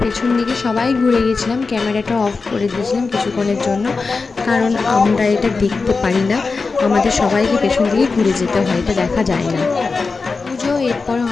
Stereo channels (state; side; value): quieter; right; 4.3 dB